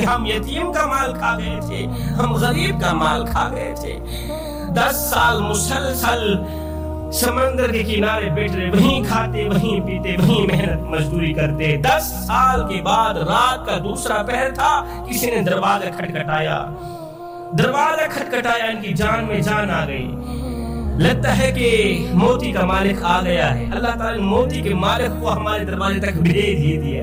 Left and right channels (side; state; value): both; identical; correlation 1.00